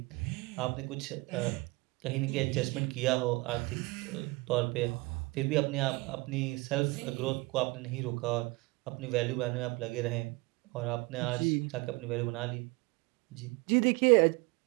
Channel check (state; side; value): quieter; left; 24.6 dB